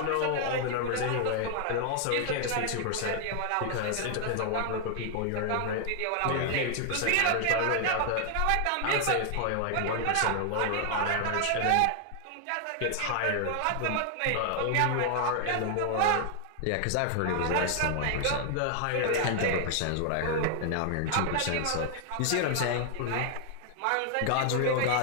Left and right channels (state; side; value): different; both; correlation 0.00